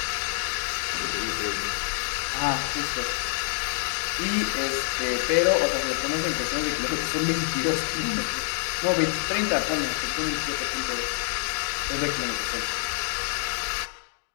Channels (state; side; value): silent; right; digital silence